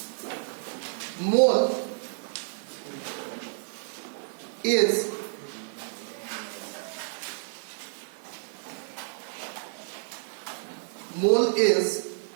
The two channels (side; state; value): left; silent; digital silence